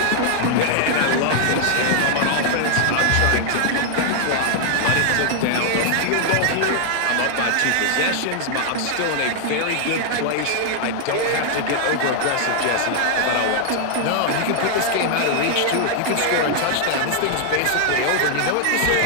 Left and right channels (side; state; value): both; different; correlation -0.01